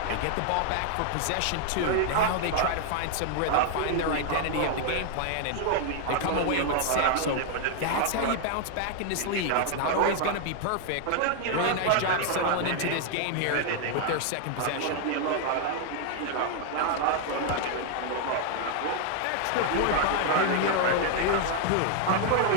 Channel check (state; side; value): different; both; correlation 0.00